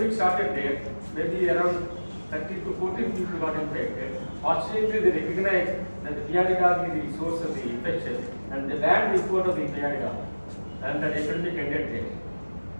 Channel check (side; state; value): both; inverted; correlation -1.00